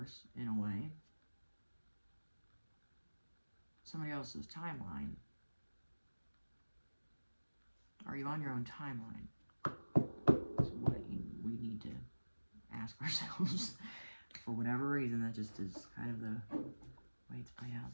in a way? Somebody else's timeline? Are you on your own timeline? That's what we need to ask ourselves. For whatever reason, that just is kind of the way it's played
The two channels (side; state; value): both; inverted; correlation -1.00